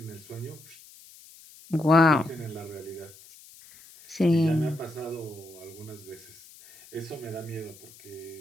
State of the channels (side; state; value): left; noise; hiss, 21 dB below the sound